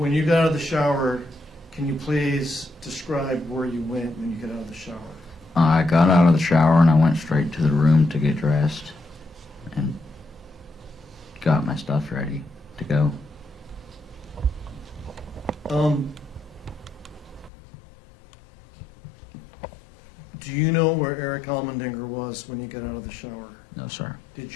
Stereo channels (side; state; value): right; drops out; at 17.5 s